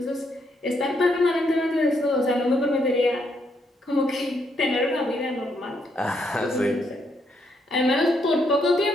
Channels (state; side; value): normal; both; correlation 0.75